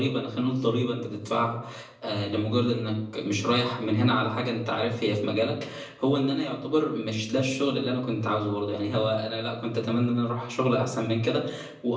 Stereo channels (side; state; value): both; identical; correlation 1.00